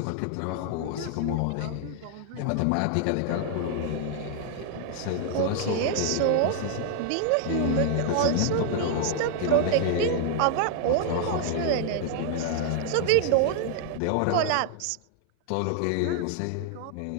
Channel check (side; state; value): both; different; correlation 0.00